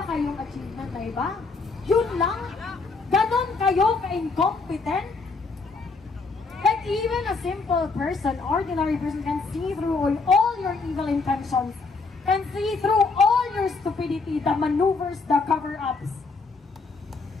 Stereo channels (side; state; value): right; quieter; 4.1 dB